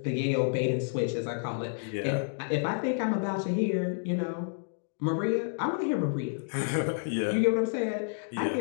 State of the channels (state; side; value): silent; right; digital silence